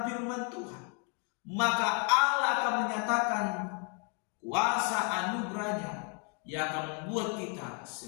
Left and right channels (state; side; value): quieter; right; 37.8 dB